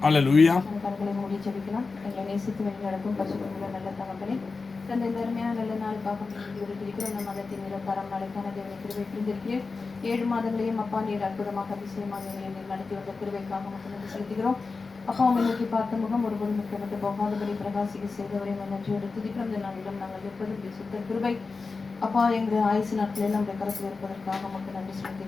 அல்லேலூயா. கண்களை மூடி ஜெபிக்கலாம். எங்களை நேசித்து வழி நடக்கும் பரிசுத்தமுள்ள நல்ல தகப்பனே, தந்தை அருமையான நல்ல நாளுக்காக இருக்கிற நம் மதத்தின் நிரப்பரம் நாளைக்கான தேவனை கிருபை புரிந்திருக்கிறேன். 7 மாதங்களையும் அப்பா நீர் அற்புதமாக அதிசயமாக எங்களை நடத்தி வந்த கிருபைக்காக மட்டும் நன்றி செலுத்துகிறோம். அப்பா உண்மை நோக்கி பார்த்த முகம் ஒருபோதும் முக்கியப்பட்டு போகாதபடி பிரகாசிக்க செய்தவரை நன்றியோடு துதிக்கிறோம். இந்த நாளிலும் நாங்கள் இருப்பது சுத்த கிருபை. அப்பா எங்கள் ஆயுசு நாட்களில் நம்முடைய கருத்தில் இருப்பதற்காக மட்டும் நன்றி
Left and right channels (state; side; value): quieter; right; 4.2 dB